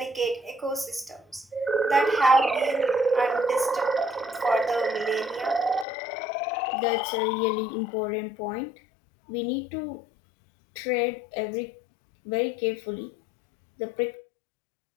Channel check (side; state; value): right; drops out; at 5.9 s